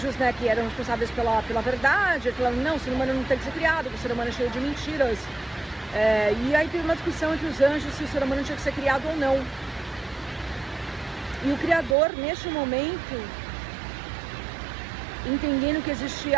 né, que eram responsáveis pela verdade, falando, não, o ser humano não tem que ser criado, o ser humano é cheio de mentiras. E aí teve uma discussão entre os anjos se o ser humano tinha que ser criado ou não. E o Criador, neste momento, entendendo que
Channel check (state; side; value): drops out; left; at 12.0 s